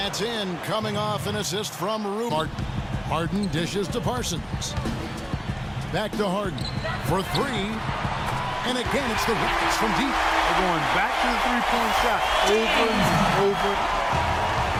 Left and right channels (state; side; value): identical; both; correlation 1.00